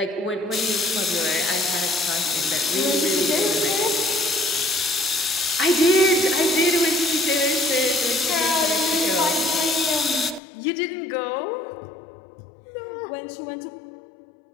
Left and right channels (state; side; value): drops out; right; at 10.4 s